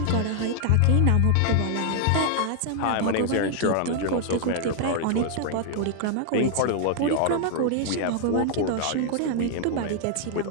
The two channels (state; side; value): different; both; correlation 0.00